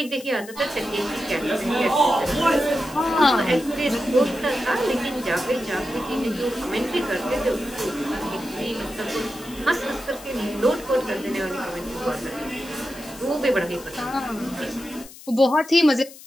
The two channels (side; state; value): left; noise; hiss, 18 dB below the sound